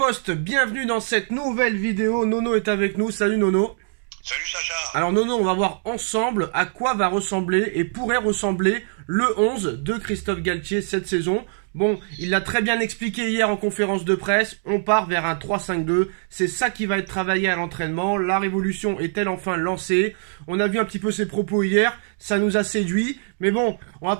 bienvenue dans cette nouvelle vidéo. Nono est avec nous. Salut Nono. Salut Sacha. Alors Nono, on va voir ensemble à quoi va ressembler et pourrait ressembler le 11 de Christophe Galtier cette saison. Bon, il l'a très bien expliqué hier en conférence de presse, on part vers un 3-5-2, c'est ça qui va être travaillé à l'entraînement, la révolution est-elle enfin lancée? On a vu un petit peu ses propos hier, ça nous a séduit, mais bon, on va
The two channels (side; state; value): left; silent; digital silence